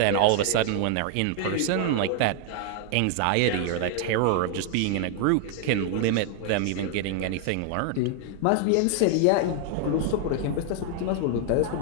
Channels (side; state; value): both; different; correlation 0.00